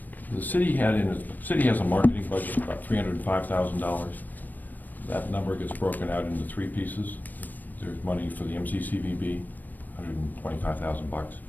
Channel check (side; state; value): right; late; 0.087 ms